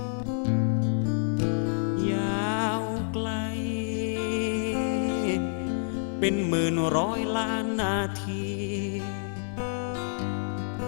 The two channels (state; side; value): silent; right; digital silence